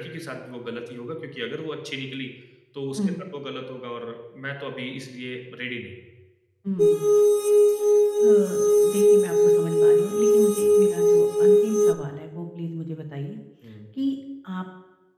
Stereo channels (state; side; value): identical; both; correlation 1.00